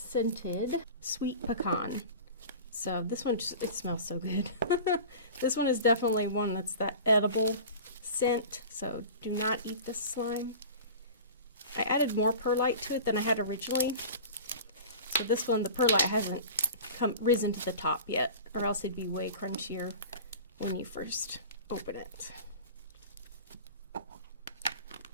sweet pecan. So this one, it smells so good. This one is definitely one that's that edible scent, so do not eat this slime. I added more perlite to it than I had originally. So this one, the perlite hasn't risen to the top yet, or else it'd be way crunchier when you first open it.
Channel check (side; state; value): both; inverted; correlation -0.37